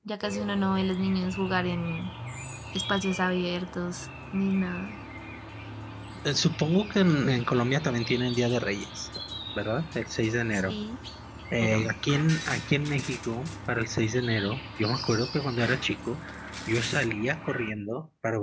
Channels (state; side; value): identical; both; correlation 1.00